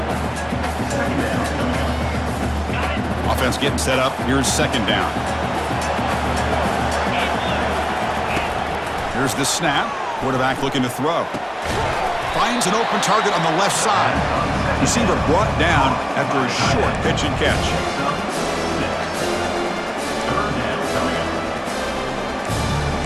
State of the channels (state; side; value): identical; both; correlation 1.00